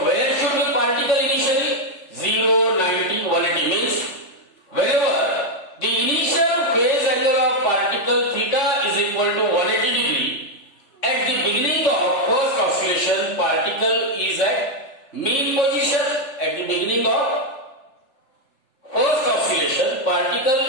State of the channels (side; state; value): right; late; 3.4 ms